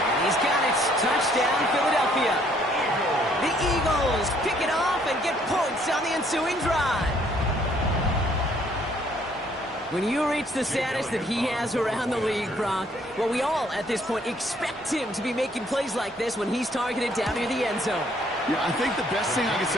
he's got it. Touchdown, Philadelphia. The Eagles pick it off and get points on the ensuing drive. When you reach the status that he has around the league, Brock, well, we all at this point expect him to be making plays like this when he's targeted down near the end zone. Yeah, I think the best thing I can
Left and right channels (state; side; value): normal; both; correlation 0.64